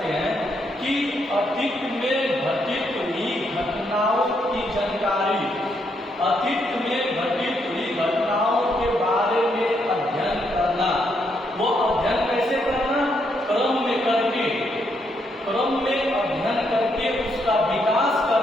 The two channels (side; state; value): both; normal; correlation 0.76